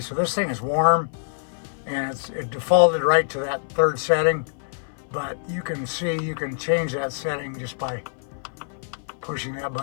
so this thing is warm, and it defaulted right to that 3rd setting. But you can see, you can change that setting just by pushing that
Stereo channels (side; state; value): right; silent; 58 dB below the other